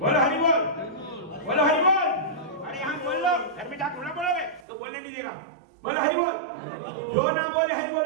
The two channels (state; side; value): drops out; left; at 4.7 s